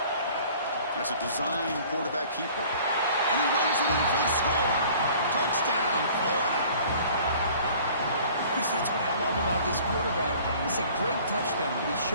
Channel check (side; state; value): both; inverted; correlation -0.50